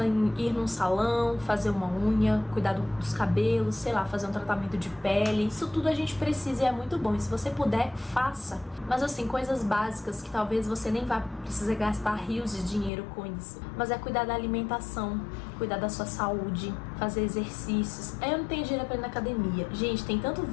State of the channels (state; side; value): drops out; right; at 12.9 s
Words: em ir num salão, fazer uma unha, cuidar dos cabelos, sei lá, fazer um tratamento de pele. Isso tudo a gente precisa e é muito bom. E se você puder, faça. Mas assim, coisas básicas que talvez você nem vá precisar gastar rios de dinheiro com isso. Mas é cuidar da alimentação, cuidar da sua saúde, fazer exercícios. Eu não tenho dinheiro pra ir na academia. Gente, tem tanto